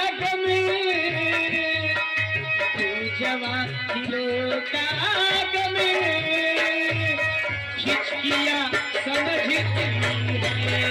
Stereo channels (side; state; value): both; identical; correlation 1.00